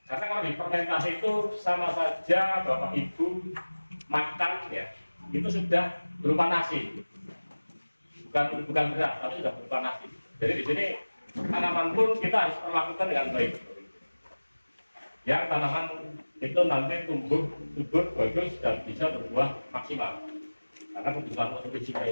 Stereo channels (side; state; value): both; inverted; correlation -1.00